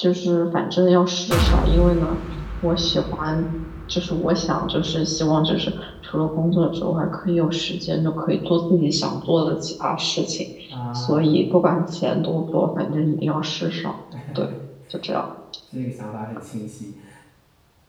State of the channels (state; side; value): identical; both; correlation 1.00